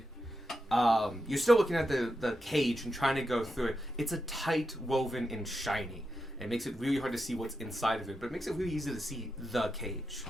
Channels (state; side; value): normal; both; correlation 0.87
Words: you're still looking at the cage and trying to go through it. It's a tight woven and shiny. It makes it really hard to see what's inside of it, but it makes it really easy to see the cage.